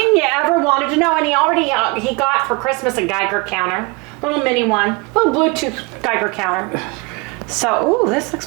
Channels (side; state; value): left; quieter; 28.0 dB